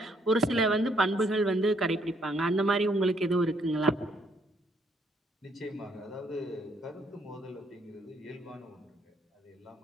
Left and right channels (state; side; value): normal; both; correlation 0.70